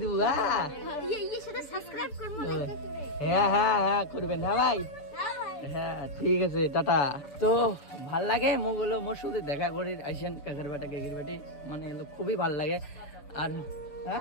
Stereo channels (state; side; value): late; right; 6.9 ms